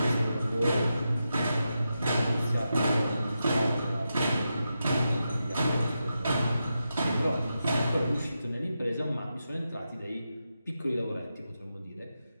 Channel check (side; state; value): both; inverted; correlation -0.88